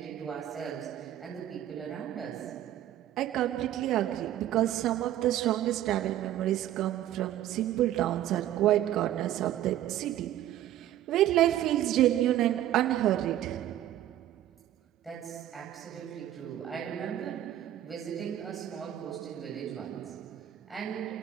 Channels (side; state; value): left; quieter; 12.5 dB